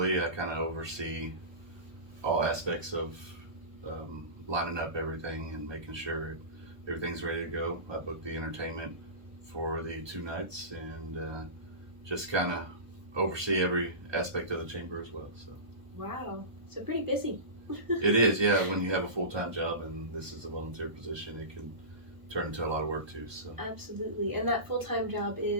I kind of oversee all aspects of lining up everything and making sure everything's ready to go. I booked the entertainment for the 2 nights and just kind of oversee every aspect of the chamber as well. So Wow, so pretty busy. it is, yeah. When you have a full-time job and this is a volunteer position, it can turn into a lot of work too. So Absolutely. And that full-time job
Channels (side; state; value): left; late; 1.2 ms